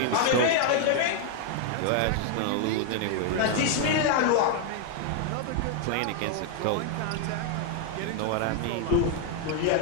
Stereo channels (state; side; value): different; both; correlation 0.00